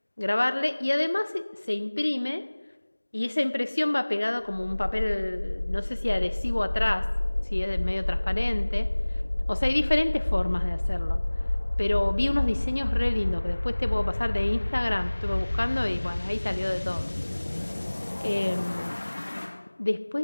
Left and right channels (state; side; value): inverted; both; correlation -1.00